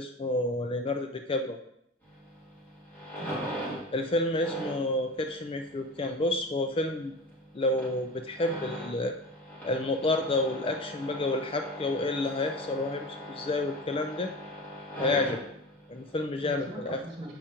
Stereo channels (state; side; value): normal; both; correlation 0.32